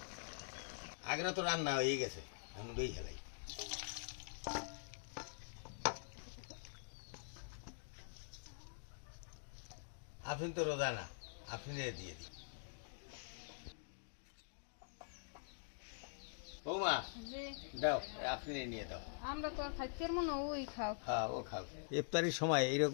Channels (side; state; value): right; silent; digital silence